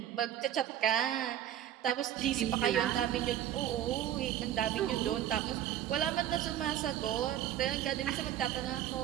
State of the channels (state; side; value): quieter; left; 11.4 dB